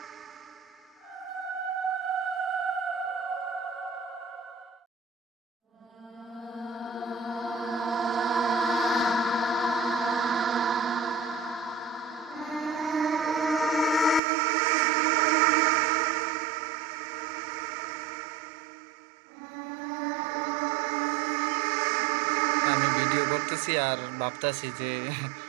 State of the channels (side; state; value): left; drops out; at 14.2 s